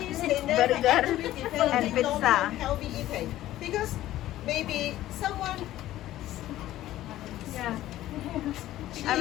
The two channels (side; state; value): right; quieter; 14.4 dB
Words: they never actually develop long-term healthy eating because maybe someone Yeah. she I